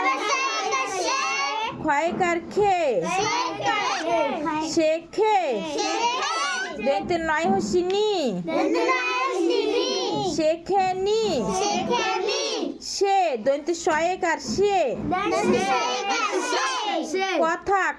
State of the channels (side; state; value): both; identical; correlation 1.00